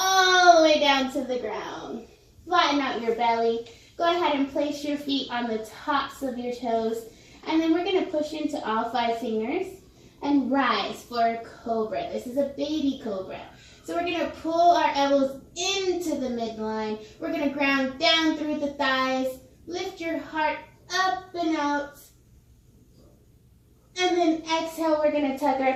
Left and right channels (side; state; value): both; identical; correlation 1.00